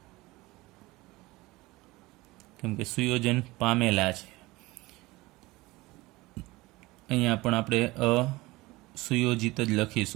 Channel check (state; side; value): quieter; left; 20.8 dB